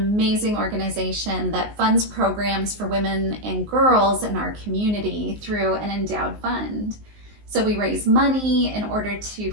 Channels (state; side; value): late; left; 19 ms